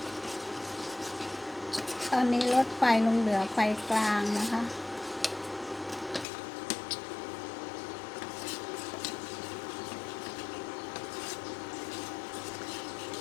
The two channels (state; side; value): drops out; right; at 6.2 s